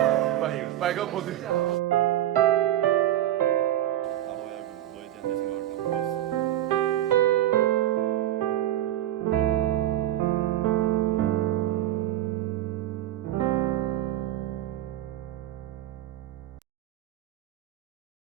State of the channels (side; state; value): left; quieter; 13.2 dB